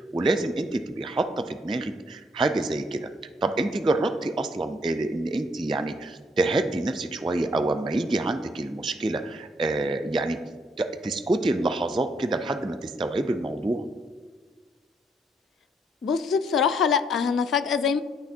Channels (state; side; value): normal; both; correlation 0.70